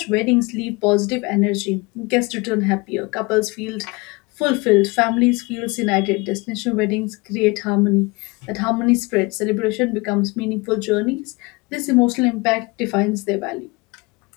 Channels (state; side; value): quieter; right; 25.6 dB